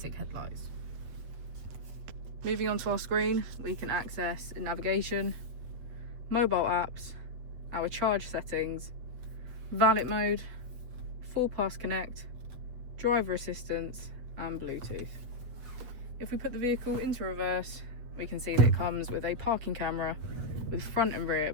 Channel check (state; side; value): late; left; 7.9 ms